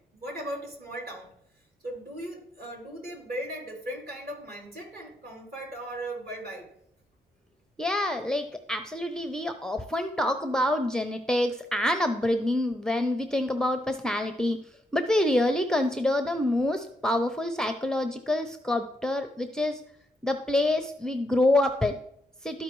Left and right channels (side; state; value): both; normal; correlation 0.80